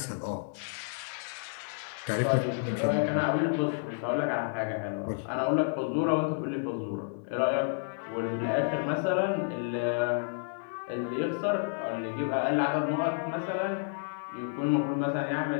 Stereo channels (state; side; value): silent; right; 57 dB below the other